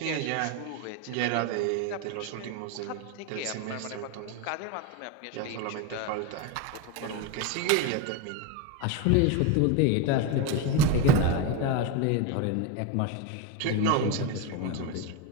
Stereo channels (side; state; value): both; different; correlation 0.03